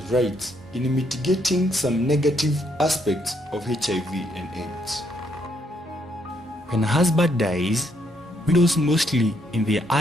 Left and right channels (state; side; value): normal; both; correlation 0.73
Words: rights in mitigating some negative aspects of HIV and AIDS. When a husband dies, widows mostly in their